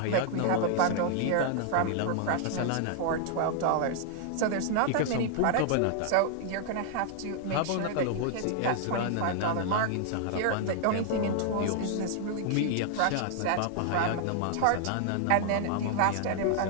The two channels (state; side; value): different; both; correlation -0.01